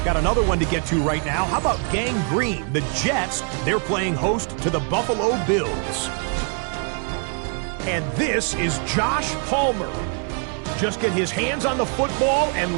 Got another one to get to right now. How about Gang Green? The Jets, they're playing host to the Buffalo Bills. And this is Josh Palmer. Just get his hands on the football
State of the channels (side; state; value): left; quieter; 39.6 dB